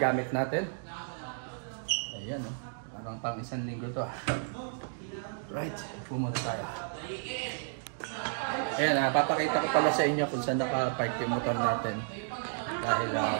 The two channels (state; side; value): silent; left; digital silence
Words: natin. Ayan, parang pang isang linggo to. Right, pumunta tayo. Ayan, papakita ko pala sa inyo kung saan naka-park yung motor natin. Dahil